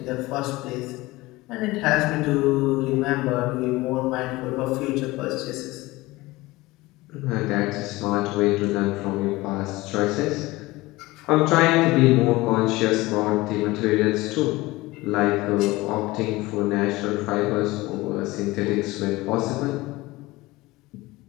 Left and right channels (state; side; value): quieter; right; 20.3 dB